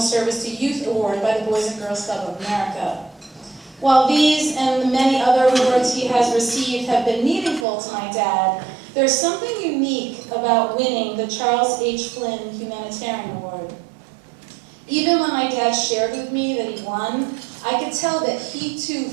Service to Youth Award by the Boys and Girls Club of America. While these and the many other awards he has received have been meaningful to my dad, there's something unique about winning the Charles H. Flynn Humanitarian Award. Even when my dad shared with me that he won, I could tell that he too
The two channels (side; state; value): left; drops out; at 7.7 s